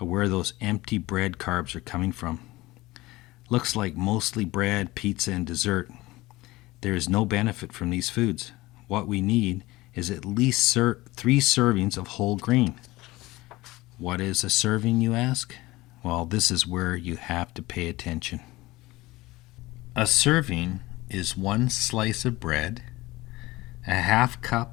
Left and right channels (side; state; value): right; quieter; 19.7 dB